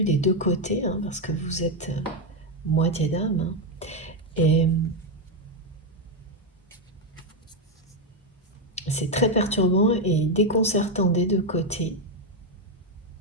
des deux côtés, parce que vous êtes moitié d'âme. Et c'est très perturbant et déconcertant des deux côtés.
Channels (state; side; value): normal; both; correlation 0.04